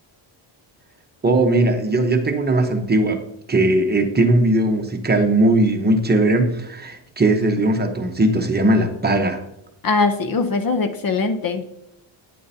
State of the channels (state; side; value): normal; both; correlation 0.45